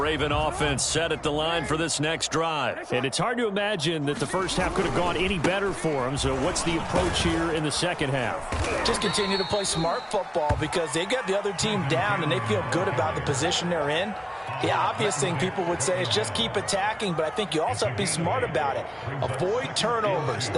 offense set at the line for this next drive. And it's hard to imagine that the first half could have gone any better for them. So what's the approach here in the second half? Just continue to play smart football because they got the other team down and they feel good about the position they're in. The obvious thing people would say is just keep attacking, but I think you also have to be smart about it. Avoid turnovers.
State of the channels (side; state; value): both; identical; correlation 1.00